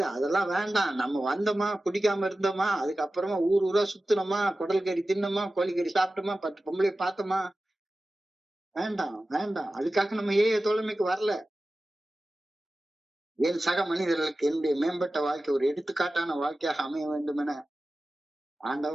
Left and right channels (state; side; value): normal; both; correlation 0.95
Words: அதெல்லாம் வேண்டாம். நம்ம வந்தோமா, குடிக்காம இருந்தோமா, அதுக்கப்புறமா ஊர் ஊரா சுத்தினோமா, குடல் கறி தின்னோமா, கோழிக்கறி சாப்பிட்டோமா, 10 பொம்பளைய பார்த்தோமா, வேண்டாம் வேண்டாம். அதுக்காக நம்ம தோழமைக்கு வரல. என் சக மனிதர்களுக்கு என்னுடைய மேம்பட்ட வாழ்க்கை ஒரு எடுத்துக்காட்டான வாழ்க்கையாக அமைய வேண்டும் என